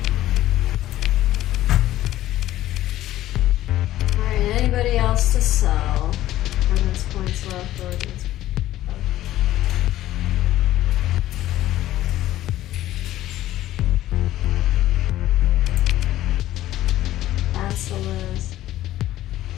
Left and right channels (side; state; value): right; quieter; 14.3 dB